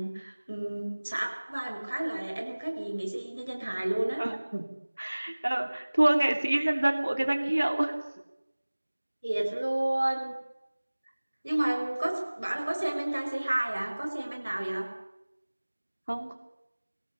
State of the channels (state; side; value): inverted; both; correlation -1.00